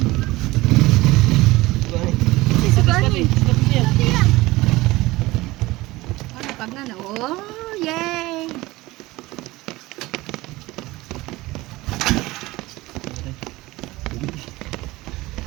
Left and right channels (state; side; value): quieter; left; 19.7 dB